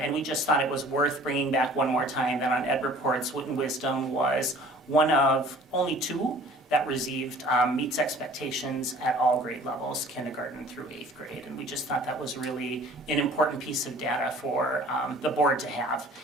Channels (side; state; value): both; normal; correlation 0.50